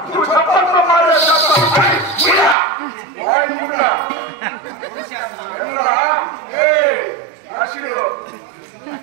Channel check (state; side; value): drops out; left; at 2.6 s